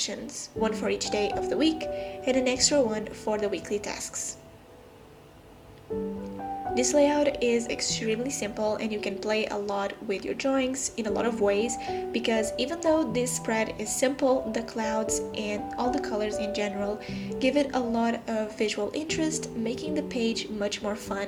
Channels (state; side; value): identical; both; correlation 1.00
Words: one for each day of the week and an extra one for the weekly tasks. This layout is extremely simple, and you can play a lot with your drawings in a lot of ways, because even though this spread is simple, the clouds and all the colors in general give it a lot of visual interest, making the page much more fun